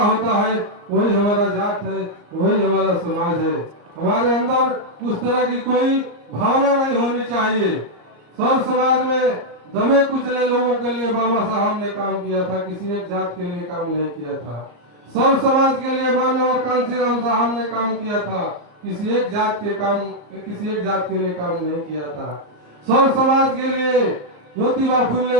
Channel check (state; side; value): late; left; 34 ms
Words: होता है वही हमारा जात है, वही हमारा समाज है। हमारे अंदर उस तरह की कोई भावना नहीं होनी चाहिए। सब समाज में दबे कुचले लोगों के लिए बाबा साहब ने काम किया था, किसी एक जात के लिए काम नहीं किया था। सब समाज के लिए मानव कांसीराम साहब ने काम किया था, किसी एक जात के लिए काम नहीं किया था। सब समाज के लिए ज्योतिबा